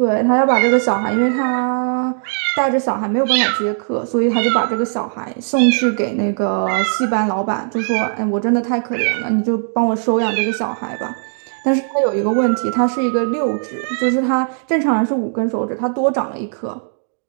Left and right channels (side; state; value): left; silent; digital silence